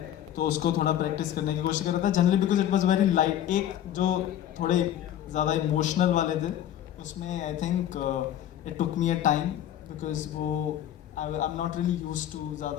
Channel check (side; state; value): right; quieter; 11.3 dB